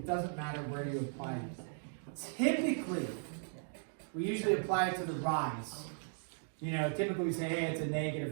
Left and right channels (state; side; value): silent; left; digital silence